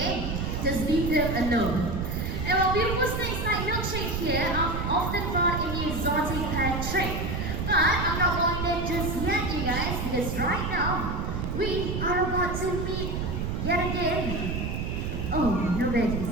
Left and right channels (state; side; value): noise; right; rumble, 2 dB below the sound